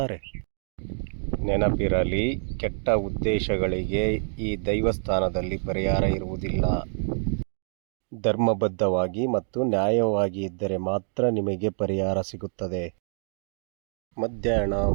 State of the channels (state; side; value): silent; left; digital silence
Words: ನೆನಪಿರಲಿ, ಕೆಟ್ಟ ಉದ್ದೇಶಗಳಿಗೆ ಈ ದೈವಸ್ಥಾನದಲ್ಲಿ ಪರಿಹಾರ ಇರುವುದಿಲ್ಲ. ಧರ್ಮಬದ್ಧವಾಗಿ ಮತ್ತು ನ್ಯಾಯವಾಗಿ ಇದ್ದರೆ ಮಾತ್ರ ನಿಮಗೆ ಪರಿಹಾರ ಸಿಗುತ್ತದೆ. ಮಧ್ಯಾಹ್ನ